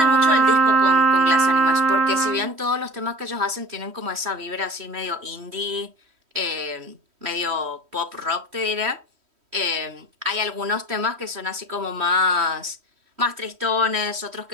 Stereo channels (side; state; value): left; late; 3.1 ms